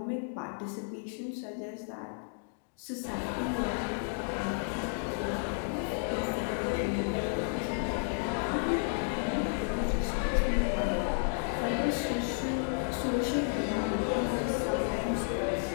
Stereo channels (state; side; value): silent; right; 56 dB below the other